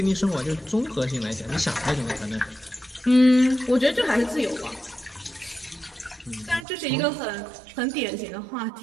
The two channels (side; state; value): left; drops out; at 6.7 s